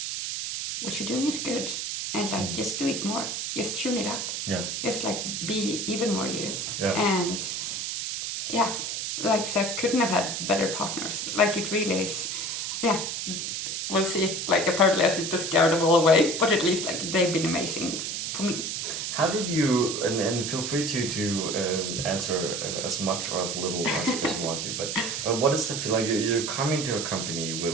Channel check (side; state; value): right; noise; hiss, 3 dB below the sound